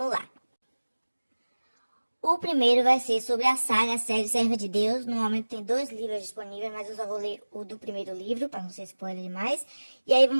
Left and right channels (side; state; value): both; inverted; correlation -1.00